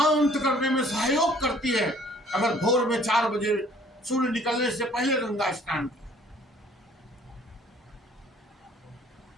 करने में सहयोग करती है। अगर भोर में 4 बजे सूर्य निकलने से पहले गंगा स्नान किया।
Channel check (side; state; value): both; normal; correlation 0.57